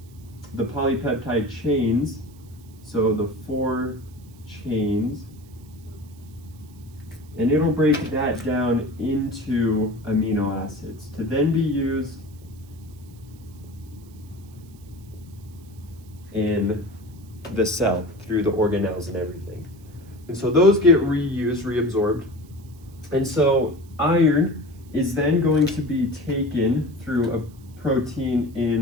polypeptide chains, so the 4 chains, and it'll break that down into amino acids to then be used in the cell through the organelles and everything. And so those get reused, reabsorbed. And so iron is then going to be taken through a protein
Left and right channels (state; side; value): noise; right; hiss, 28 dB below the sound